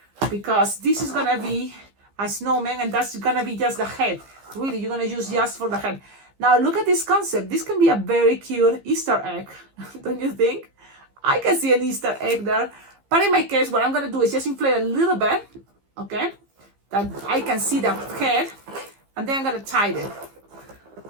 because this is gonna be a snowman and that's gonna be just the head. Really, you're gonna use just for the head. Now look at this concept. This can be a very cute Easter egg, don't you think? I can see an Easter egg there. But in my case, what I'm gonna do is just inflate a little bit, okay? That I can see the head, and then I'm gonna tie it.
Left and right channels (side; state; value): left; late; 15 ms